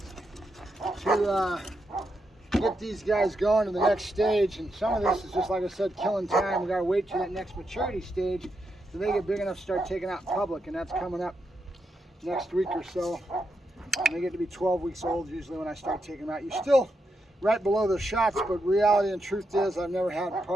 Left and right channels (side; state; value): both; normal; correlation 0.83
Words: to get these guys going to the next stage, and some of this is just, like I said, killing time. We gotta wait till that next maturity stage so they get big enough to start taking out in public, and that's coming up next week or so. And they get to be 12 weeks old usually when I start taking them out. You're still right below the shots, but reality and truth is I've never had